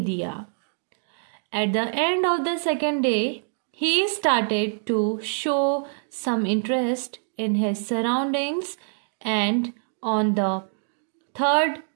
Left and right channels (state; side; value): silent; left; digital silence